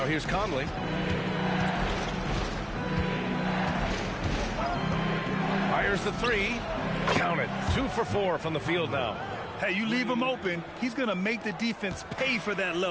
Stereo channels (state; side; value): identical; both; correlation 1.00